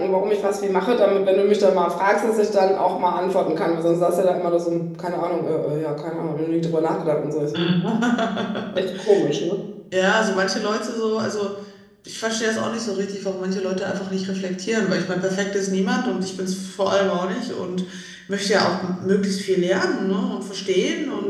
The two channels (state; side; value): identical; both; correlation 1.00